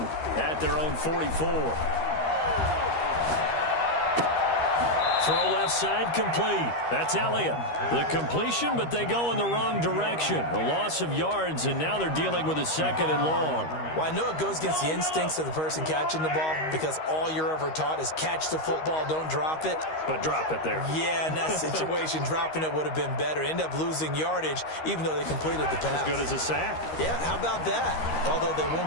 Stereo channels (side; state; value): right; late; 13 ms